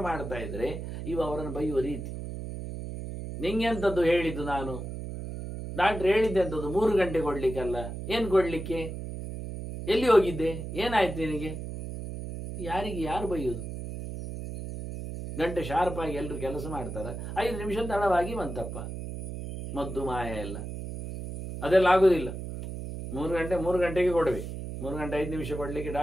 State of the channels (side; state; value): right; noise; hum, 7 dB below the sound